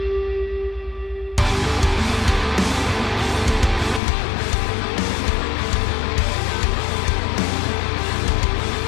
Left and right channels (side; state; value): right; drops out; at 4.0 s